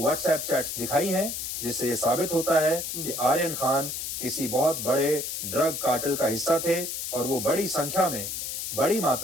व्हाट्सएप चैट्स दिखाई हैं जिससे ये साबित होता है कि आर्यन खान किसी बहुत बड़े ड्रग कार्टेल का हिस्सा थे और वो बड़ी संख्या में, बड़ी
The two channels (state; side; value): noise; left; hiss, 4 dB below the sound